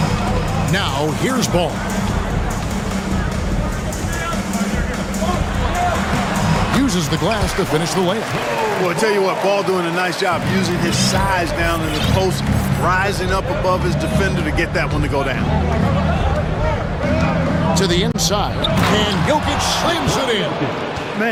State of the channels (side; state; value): both; identical; correlation 1.00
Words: Now here's Ball. Uses the glass to finish the layup. Well, I tell you what, Ball doing a nice job using his size down in the post, rising up above his defender to get that one to go down. To the inside, and Jokic slams it in.